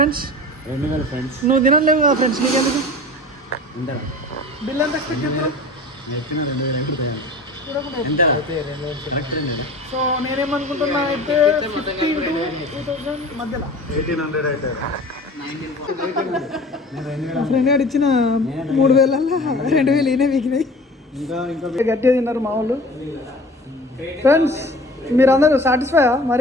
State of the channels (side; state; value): both; normal; correlation 0.41